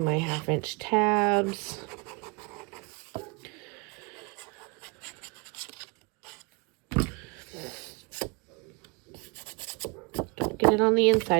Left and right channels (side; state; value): left; quieter; 30.0 dB